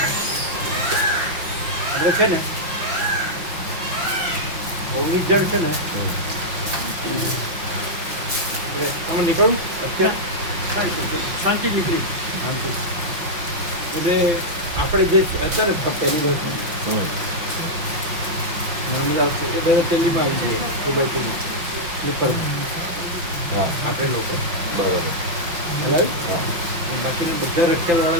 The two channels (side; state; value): left; late; 5.9 ms